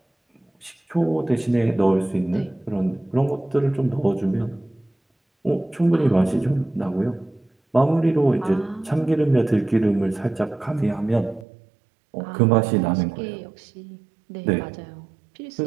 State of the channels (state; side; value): drops out; left; at 11.5 s